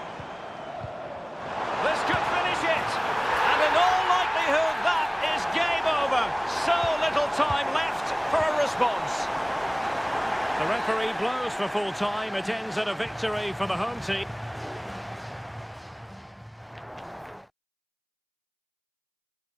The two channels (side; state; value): both; identical; correlation 1.00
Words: This could finish it. And in all likelihood, that is game over. So little time left for a response. The referee blows for full time. It ends in a victory for the home team.